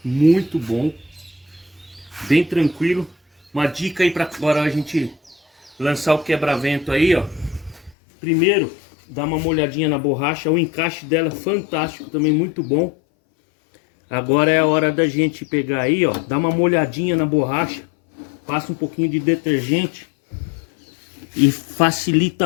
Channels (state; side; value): drops out; right; at 8.0 s